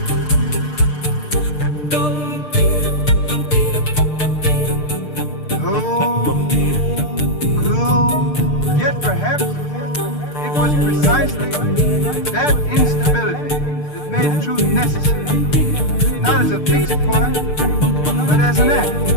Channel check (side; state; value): right; late; 6.7 ms